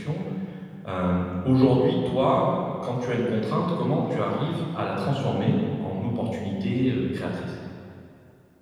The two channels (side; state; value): both; identical; correlation 1.00